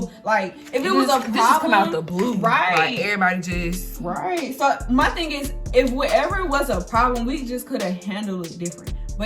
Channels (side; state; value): both; identical; correlation 1.00